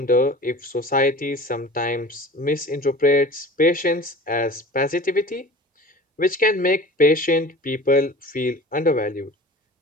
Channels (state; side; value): normal; both; correlation 0.40